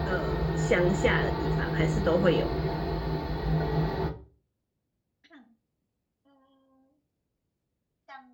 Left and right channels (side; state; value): both; identical; correlation 1.00